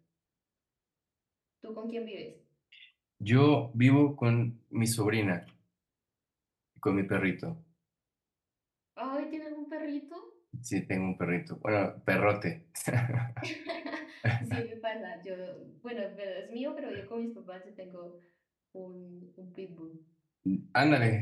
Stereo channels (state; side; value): identical; both; correlation 1.00